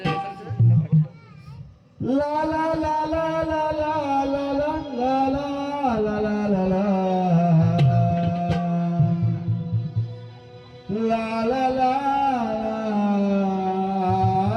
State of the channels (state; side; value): identical; both; correlation 1.00